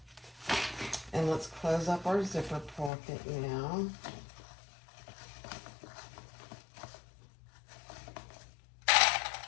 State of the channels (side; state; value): right; drops out; at 2.9 s